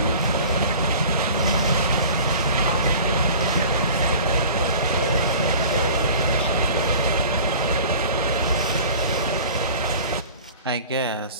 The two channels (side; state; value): both; inverted; correlation -0.42